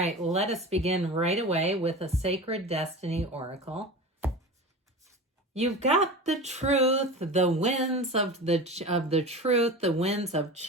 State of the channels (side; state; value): both; normal; correlation 0.31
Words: let us begin right away with a Sacred Destiny Oracle. You've got the truth, the winds of the truth, the winds of